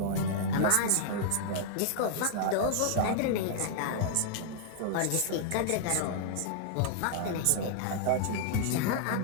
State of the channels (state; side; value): different; both; correlation -0.01